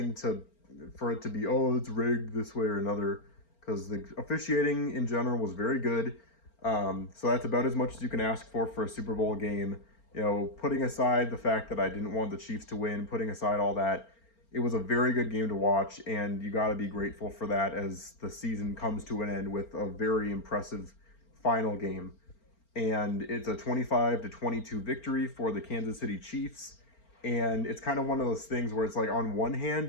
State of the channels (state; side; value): late; right; 4.4 ms